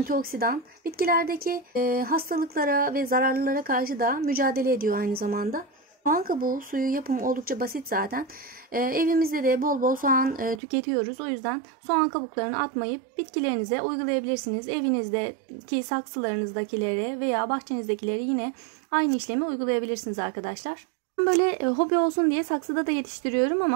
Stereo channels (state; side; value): drops out; left; at 10.6 s